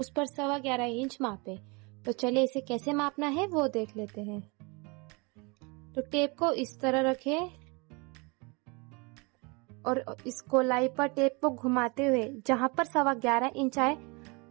पर 11.25 इंच मापे। तो चलिए इसे कैसे मापना है वो देख लेते हैं। तो टेप को इस तरह रखें और इस गोलाई पर टेप को घुमाते हुए जहां पर 11.25 इंच आए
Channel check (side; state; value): left; quieter; 29.1 dB